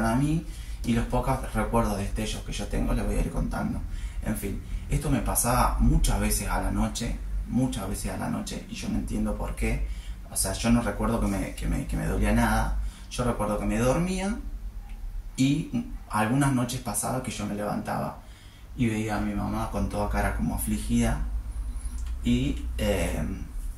a mí, y los pocos recuerdos, destellos que yo tengo les voy a ir contando. En fin, esto me pasaba muchas veces a la noche, y yo no entiendo por qué. O sea, yo no recuerdo que me dolía nada, yo recuerdo que me dormía, y algunas noches pasaba que yo me levantaba y veía a mi mamá con toda cara como afligida, y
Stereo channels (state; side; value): identical; both; correlation 1.00